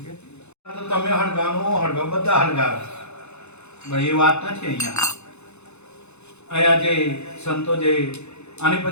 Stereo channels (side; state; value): right; late; 0.81 ms